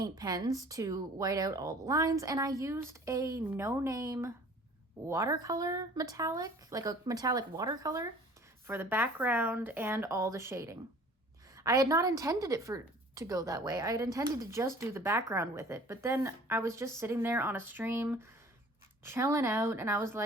pens to white out all the lines, and I used a no-name watercolor metallic, like a metallic watercolor for the background and all the shading. I had not intended it to go that way. I had intended to just do the background with it, but then I was just sitting there on a stream chilling out and I was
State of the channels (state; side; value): normal; both; correlation 0.49